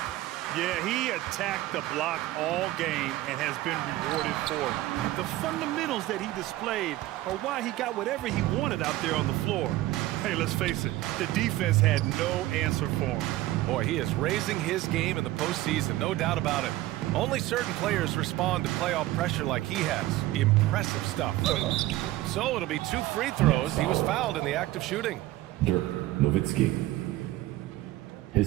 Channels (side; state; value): left; quieter; 16.6 dB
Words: Yeah, he attacked the block all game and has been rewarded for it. The fundamentals that he displayed are why he got whatever he wanted out there on the floor. Hey, let's face it, the defense had no answer for him. Boy, he is raising his game in the postseason, no doubt about it. Only certain players respond to playoff pressure like he has. Impressive stuff. So it'll be 2 free throws. He was fouled in the act of shooting. Dirk Nowitzki.